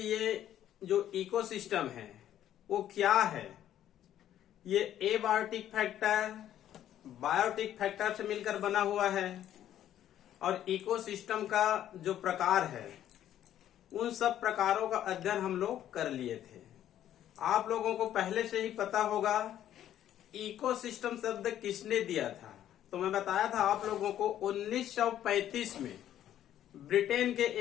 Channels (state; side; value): quieter; right; 11.4 dB